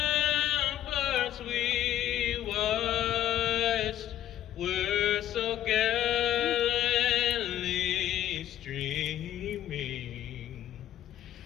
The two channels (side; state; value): right; quieter; 12.0 dB